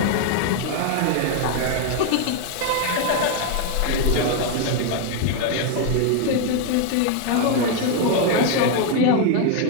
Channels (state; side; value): different; both; correlation 0.01